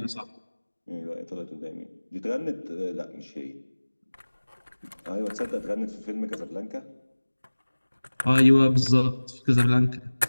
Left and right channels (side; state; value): both; inverted; correlation -1.00